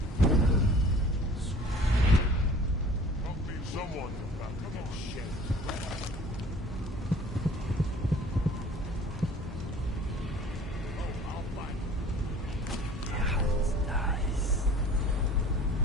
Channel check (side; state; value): both; normal; correlation 0.48